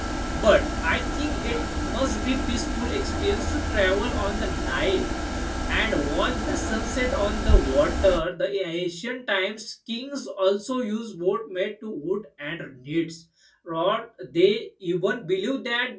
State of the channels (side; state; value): both; identical; correlation 1.00